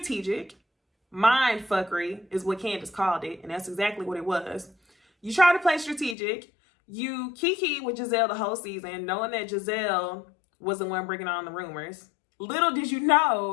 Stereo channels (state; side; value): drops out; right; at 6.2 s